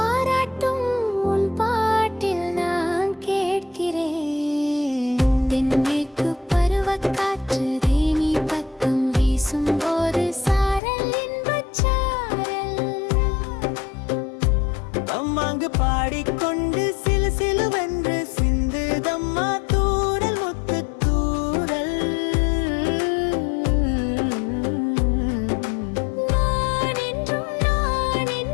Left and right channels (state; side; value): drops out; right; at 10.8 s